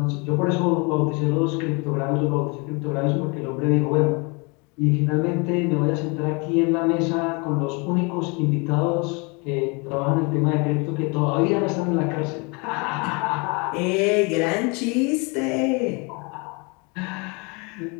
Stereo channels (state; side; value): quieter; right; 30.4 dB